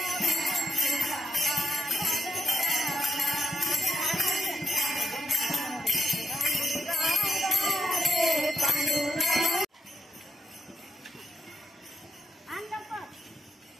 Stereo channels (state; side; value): normal; both; correlation 0.81